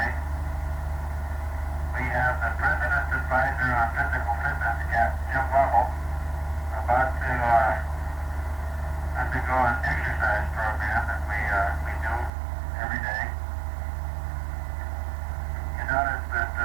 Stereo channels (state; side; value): drops out; left; at 12.3 s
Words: we have the President's Advisor on Physical Fitness, Captain Jim Lovell, about to undergo an exercise program that we do every day. You notice that